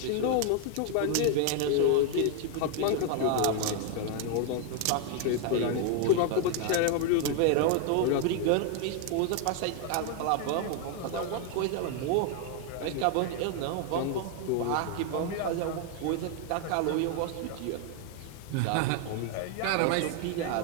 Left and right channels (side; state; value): both; different; correlation 0.00